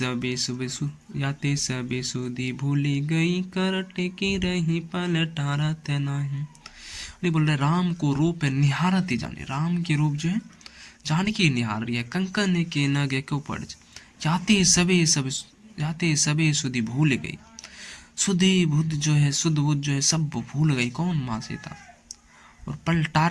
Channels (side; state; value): both; identical; correlation 1.00